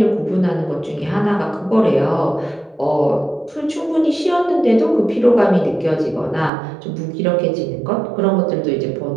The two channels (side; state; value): left; drops out; at 6.5 s